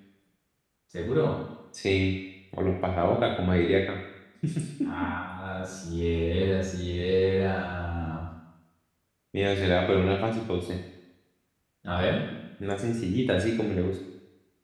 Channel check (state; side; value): identical; both; correlation 1.00